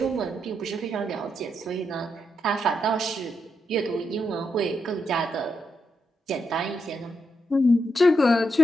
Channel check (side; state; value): both; normal; correlation 0.82